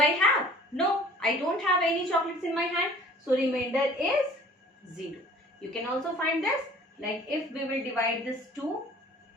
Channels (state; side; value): normal; both; correlation 0.50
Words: have? No, I don't have any chocolates in my hand. So remainder is 0. You can also find this, like if we will divide this 2